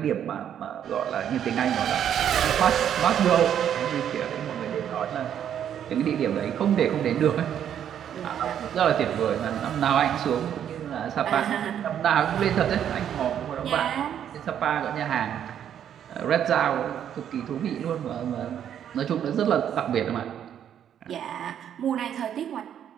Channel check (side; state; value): left; quieter; 9.5 dB